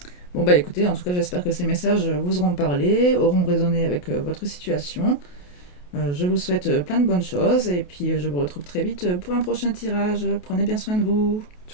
Bon bah écoutez, en tout cas j'espère que ces messages vous auront parlé, auront résonné avec votre situation. Je vous souhaite plein de bonnes choses et puis je vous retrouve très vite pour un prochain tirage. Prenez bien soin de vous.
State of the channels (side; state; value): right; late; 28 ms